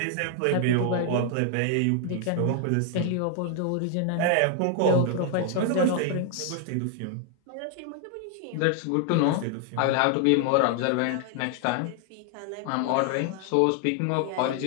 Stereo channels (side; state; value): both; different; correlation 0.00